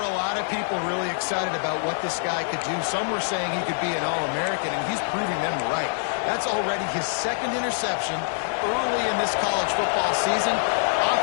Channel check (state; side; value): silent; right; digital silence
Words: a lot of people really excited about what this guy could do. Some were saying he could be an All-American, and he's proving them right. That's already his second interception early in this college football season.